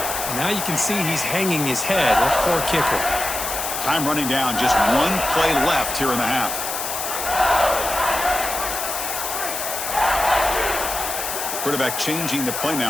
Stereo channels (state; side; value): noise; left; hiss, 4 dB below the sound